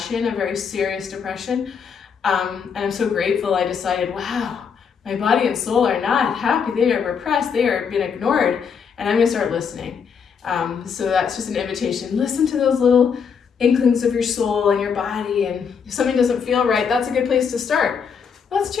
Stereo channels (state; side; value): quieter; right; 6.5 dB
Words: a very serious depression. And I'm so grateful I decided, wow, my body and soul are not happy. They are repressed. They are being ignored. And I'm going to start listening. So that's just an invitation. Listen to those little inklings of your soul and your body. And if something doesn't feel right, that's a good place to start. Let's